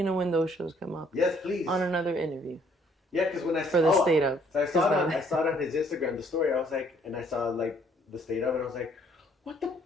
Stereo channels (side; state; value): both; normal; correlation 0.63